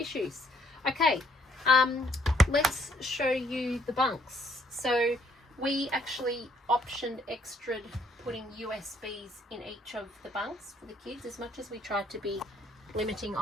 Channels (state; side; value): normal; both; correlation 0.66